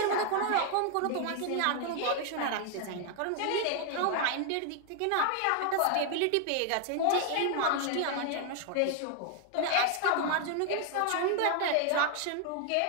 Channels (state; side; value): different; both; correlation 0.00